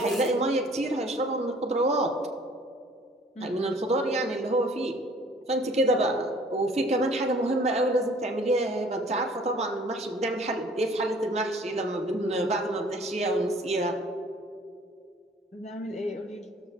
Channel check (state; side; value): normal; both; correlation 0.54